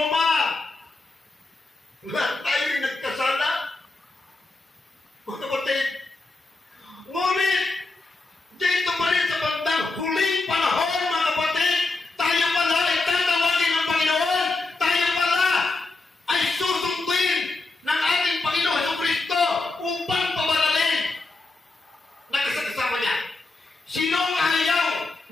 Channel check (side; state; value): right; quieter; 3.3 dB